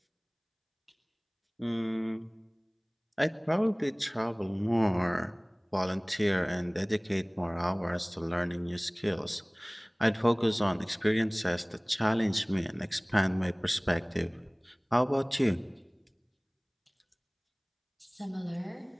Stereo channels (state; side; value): identical; both; correlation 1.00